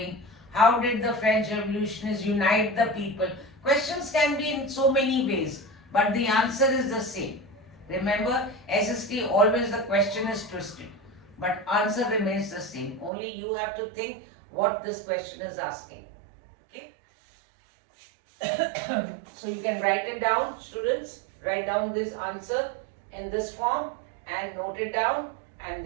How did the French revolutionists unite the people? Questions can be in so many ways, but the answer is the same. Remember, SST always the question is twisted, but answer remains the same. Only you have to think what this question is asking. Okay. So you can write it down, students. Write down this answer in this form and note it down, and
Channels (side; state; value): left; drops out; at 13.1 s